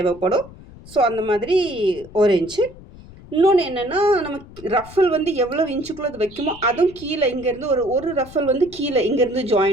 ஸோ அந்த மாதிரி 1 இன்ச்சு. இன்னொன்று என்னென்னா, நமக்கு ரஃபல் வந்து எவ்வளோ இன்ச்சுக்குள்ளே அது வைக்குமோ அதுவும் கீழே இங்கேருந்து ஒரு ரஃபல் வந்து கீழே இங்கேருந்து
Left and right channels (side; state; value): left; noise; rumble, 19 dB below the sound